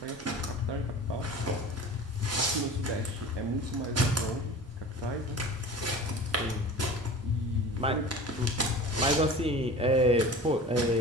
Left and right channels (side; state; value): both; normal; correlation 0.38